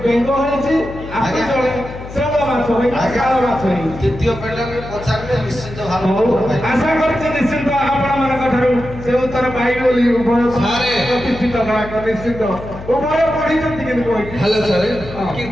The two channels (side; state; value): left; noise; hum, 13 dB below the sound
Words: बेंग होइछि आगे जणे सेवा माछ होई आगार माछ होई द्वितीय पेडर पचारले निश्चित भाव आशा करछि निश्चित आपण मानक ठारू से उत्तर पाइबे बोली उभय सारे प्रतिष्ठित करा निश्चित उभय पढिଛନ୍ତି कि कोइ हेलो सर